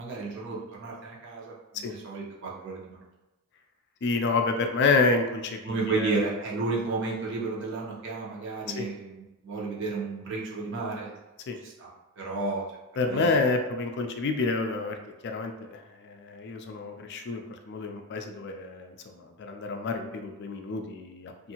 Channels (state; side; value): normal; both; correlation 0.16